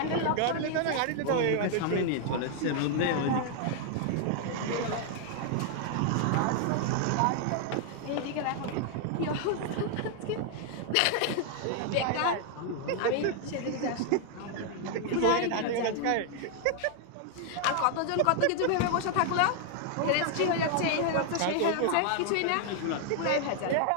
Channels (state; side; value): different; both; correlation 0.00